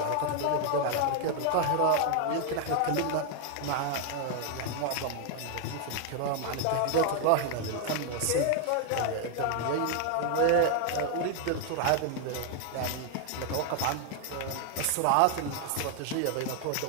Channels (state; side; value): different; both; correlation 0.00